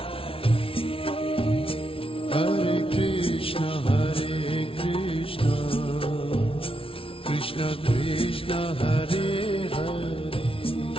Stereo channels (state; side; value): late; right; 0.26 ms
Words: Hare Krishna Krishna Krishna Hare Hare